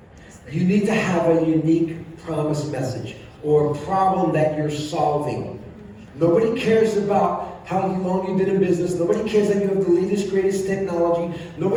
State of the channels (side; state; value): both; identical; correlation 1.00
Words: You need to have a unique promise message or a problem that you're solving. Nobody cares about how long you've been in business. Nobody cares that you have the latest, greatest technology.